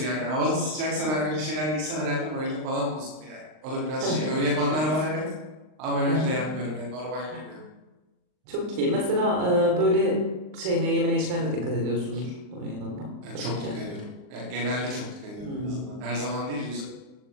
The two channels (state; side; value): late; left; 39 ms